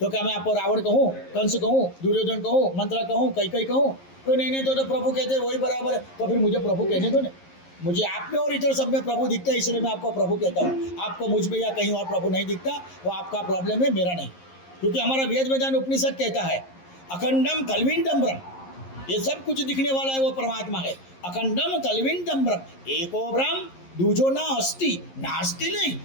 क्या मैं आपको रावण कहूँ, कंस कहूँ, दुर्योधन कहूँ, मंत्रा कहूँ, कई कहूँ? तो नहीं तो प्रभु कहते वही बराबर है। तो फिर मुझे प्रभु कहने दो ना। मुझे आप में और इधर सब में प्रभु दिखता है, इसलिए मैं आपको प्रभु कहता हूँ। आपको मुझ में या कहीं और प्रभु नहीं दिखता, वो आपका प्रॉब्लम है, मेरा नहीं। क्योंकि हमारा वेद वेदांत उपनिषद कहता है अखंडम कलविंदम ब्रह्म, ये सब कुछ दिखने वाला है वो परमात्मा है। अखंडम कलविंदम ब्रह्म एको ब्रह्म दूजो ना अस्ति, नास्ति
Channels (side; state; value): right; late; 11 ms